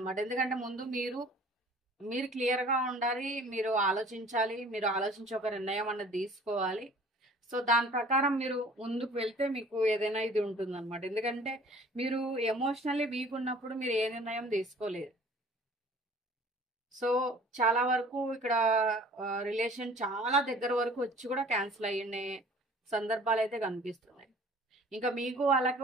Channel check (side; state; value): both; normal; correlation 0.50